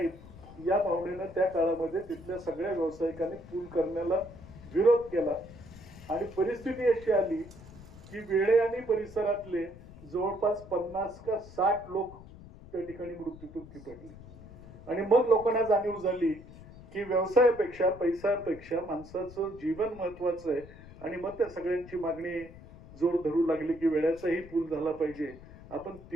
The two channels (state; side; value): noise; left; rumble, 18 dB below the sound